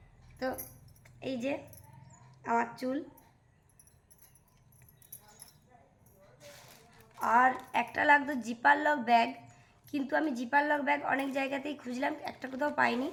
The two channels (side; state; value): both; identical; correlation 1.00